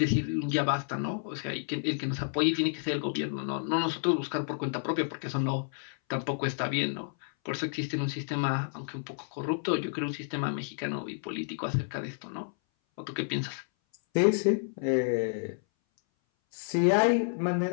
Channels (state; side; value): silent; right; 58 dB below the other